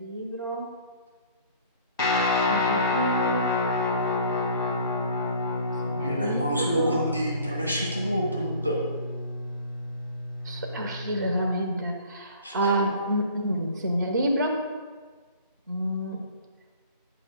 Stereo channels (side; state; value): both; inverted; correlation -0.50